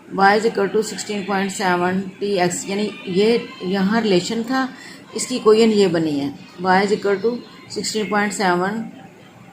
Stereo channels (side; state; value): both; identical; correlation 1.00